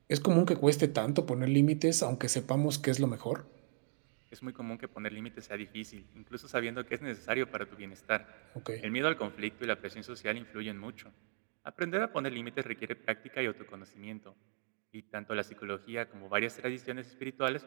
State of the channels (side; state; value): left; silent; digital silence